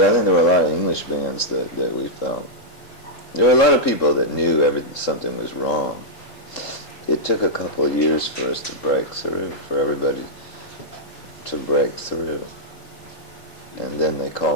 I think there were a lot of English bands that we felt. There were a lot of people that knew something was wrong. It took a couple of years for us to break through, for everybody to break through. And then they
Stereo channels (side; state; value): right; late; 3.8 ms